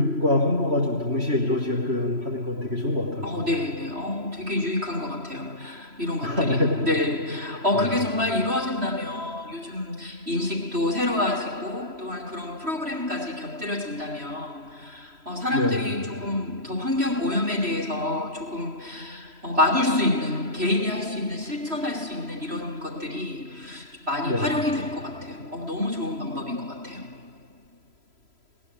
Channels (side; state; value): left; late; 3.0 ms